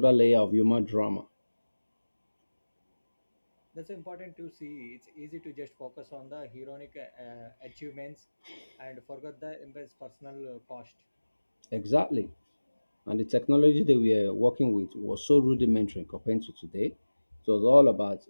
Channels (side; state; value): both; inverted; correlation -1.00